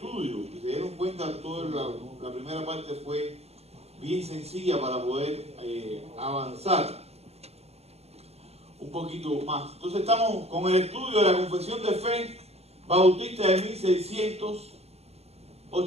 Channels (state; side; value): late; left; 0.30 ms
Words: Si se dieron cuenta, toda la primera parte fue bien sencilla para poder avanzar un poquito más. Entonces estamos con el estudio de la Confesión de Fe Bautista de